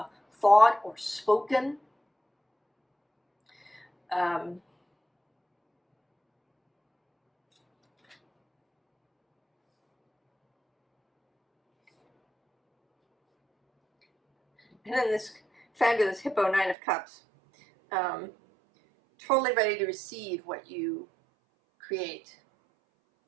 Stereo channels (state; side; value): drops out; left; at 16.8 s